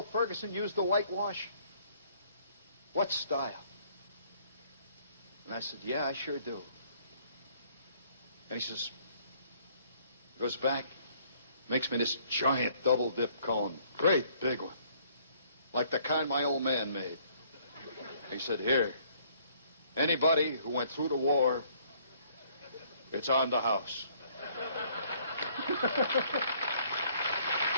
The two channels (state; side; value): inverted; both; correlation -0.62